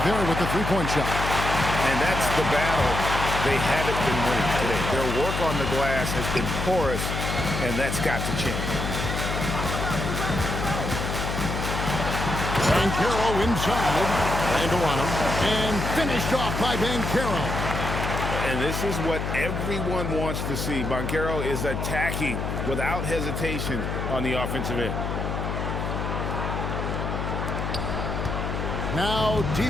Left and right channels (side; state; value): left; noise; hum, 3 dB below the sound